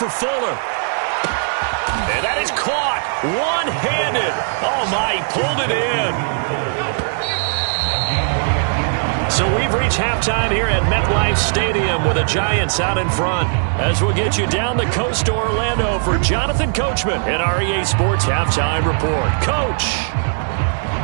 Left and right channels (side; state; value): left; silent; digital silence